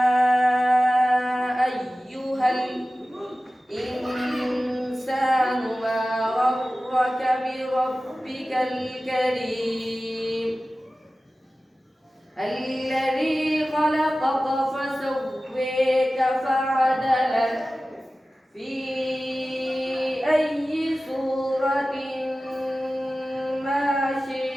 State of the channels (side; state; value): both; normal; correlation 0.96